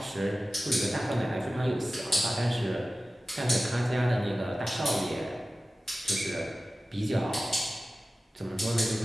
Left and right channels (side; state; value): both; normal; correlation 0.96